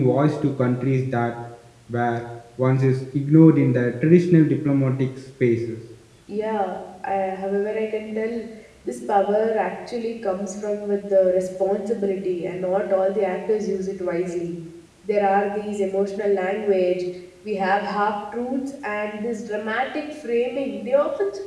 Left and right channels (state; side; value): identical; both; correlation 1.00